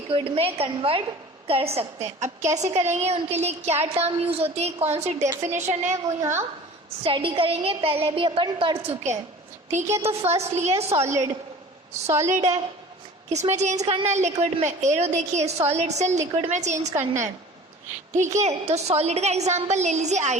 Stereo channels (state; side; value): normal; both; correlation 0.43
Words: में कन्वर्ट कर सकते हैं। अब कैसे करेंगे, उनके लिए क्या टर्म यूज होती है, कौन सी डेफिनेशन है, वो यहाँ स्टडी करेंगे, पहले भी अपन पढ़ चुके हैं, ठीक है। तो फर्स्ट लिए सॉलिड, सॉलिड है, किस में चेंज करना है, लिक्विड में, एरो देखिए, सॉलिड से लिक्विड में चेंज करना है, ठीक है। तो सॉलिड का एग्जांपल ले लीजिए